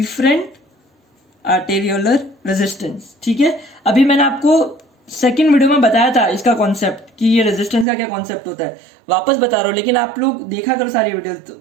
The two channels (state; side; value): drops out; left; at 7.9 s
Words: आर्टेरियोलर रेजिस्टेंस। ठीक है, अभी मैंने आपको सेकंड वीडियो में बताया था इसका कॉन्सेप्ट कि ये रेजिस्टेंस का क्या कॉन्सेप्ट होता है, वापस बता रहा हूँ, लेकिन आप लोग देखा करो सारी वीडियो, तो